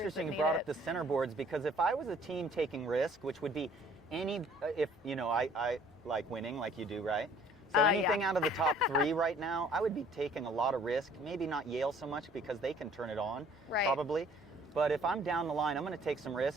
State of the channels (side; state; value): both; normal; correlation 0.56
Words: you brought up the centerboards, because if I was a team taking risk, which would be I like winning like you do, right? So anything yeah. out of the top 3 right now, I would be taking a lot of risk. Maybe not Yale so much because they can turn it on, Right. probably. But if I'm down the line, I'm going to take some